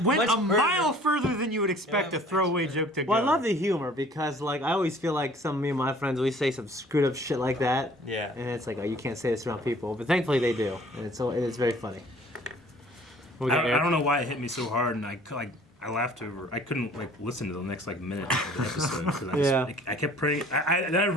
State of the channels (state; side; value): normal; both; correlation 0.53